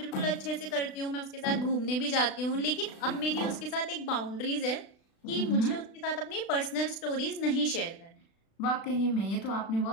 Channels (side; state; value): right; late; 36 ms